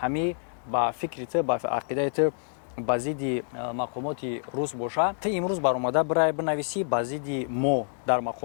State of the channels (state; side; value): silent; right; digital silence